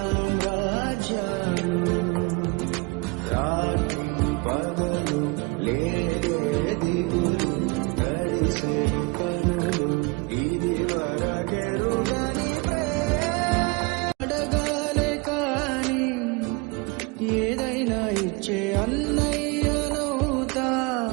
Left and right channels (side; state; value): left; quieter; 27.7 dB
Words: రాత్రి పగలు లేదే దిగులు, గడిసే కనులు ఇది వరకెరుగని అడగాలే కాని ఏదైనా ఇచ్చే అన్నయ్యనవుతా,